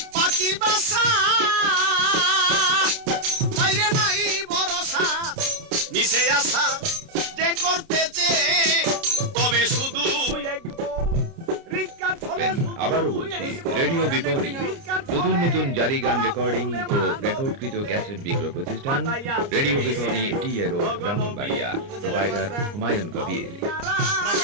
পাখির বাসা বাইরে নাই ভরসা মিশে আসা যে করতেছে তবে শুধু আবারও বলছি রেডিও বিপণী নতুন নতুন জারি গান রেকর্ডিং ও রেকর্ডকৃত ক্যাসেট বিক্রয় প্রতিষ্ঠান রেডিও বিপণী টি এ রোড ব্রাহ্মণবাড়িয়া প্রোপাইটার হুমায়ুন কবির।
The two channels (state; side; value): late; left; 29 ms